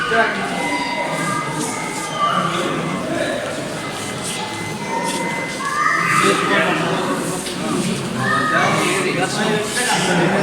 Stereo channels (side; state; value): both; identical; correlation 1.00